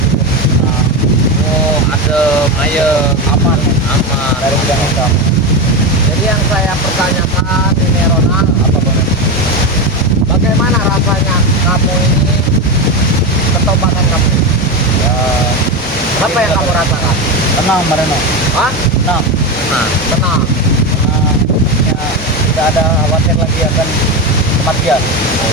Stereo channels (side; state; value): both; normal; correlation 0.16